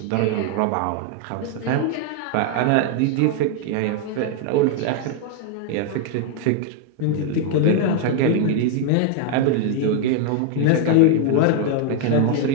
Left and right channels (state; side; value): different; both; correlation 0.00